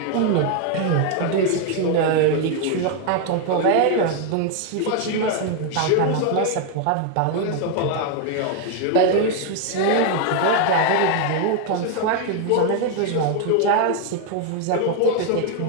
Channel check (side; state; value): both; different; correlation 0.01